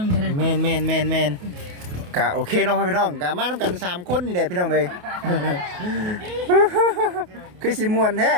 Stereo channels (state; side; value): late; left; 28 ms